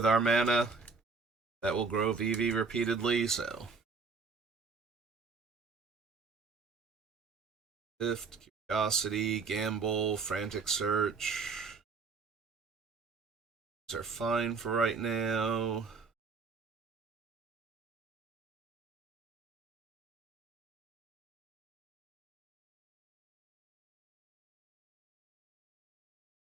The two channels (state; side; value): quieter; left; 4.7 dB